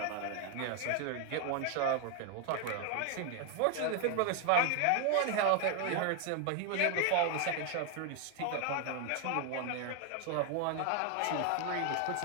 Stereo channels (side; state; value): both; different; correlation 0.01